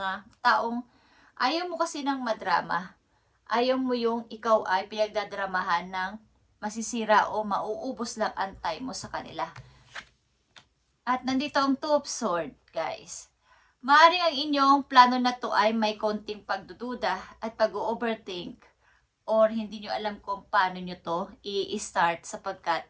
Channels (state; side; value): identical; both; correlation 1.00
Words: taong ayaw mo kasi ng madrama. Ayaw mo yung ikaw ay pinagdadramahan ng masisira o mauubos lang ang time mo sa kanila. At nandito ang Two of Swords, guys. Maaaring ang inyong plano na to ay may konting pagdududa at pag-overthink or hindi nyo alam kung paano nyo to i-start sapagkat